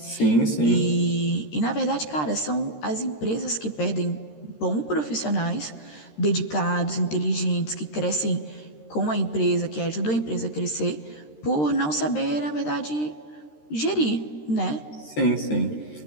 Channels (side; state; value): right; late; 13 ms